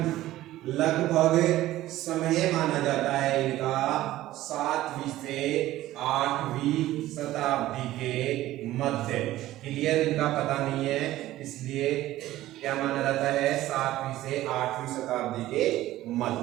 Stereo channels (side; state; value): left; quieter; 15.3 dB